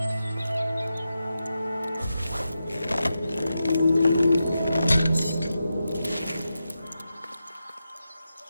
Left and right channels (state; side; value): inverted; both; correlation -0.89